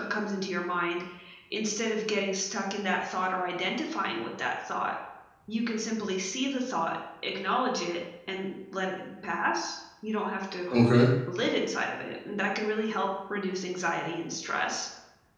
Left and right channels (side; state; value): both; identical; correlation 1.00